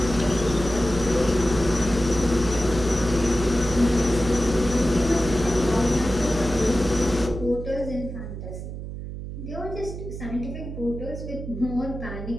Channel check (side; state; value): right; noise; hum, 8 dB below the sound